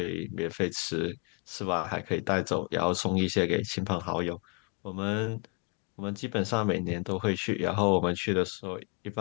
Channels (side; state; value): right; quieter; 36.4 dB